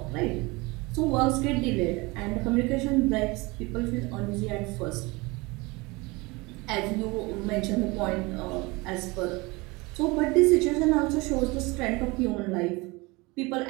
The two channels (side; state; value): left; quieter; 24.5 dB